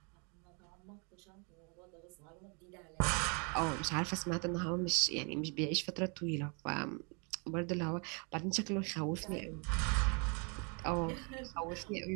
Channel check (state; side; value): quieter; left; 34.6 dB